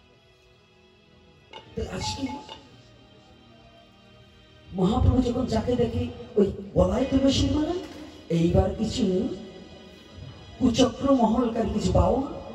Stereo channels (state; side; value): identical; both; correlation 1.00